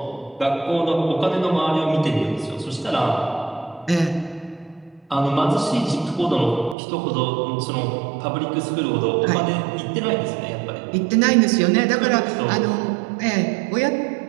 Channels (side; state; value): left; drops out; at 6.8 s